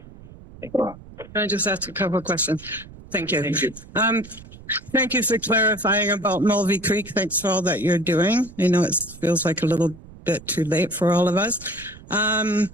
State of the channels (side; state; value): right; noise; rumble, 19 dB below the sound